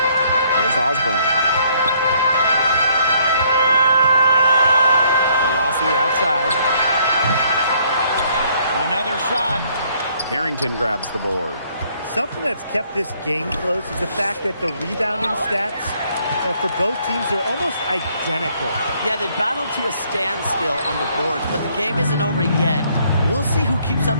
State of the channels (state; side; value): inverted; both; correlation -0.66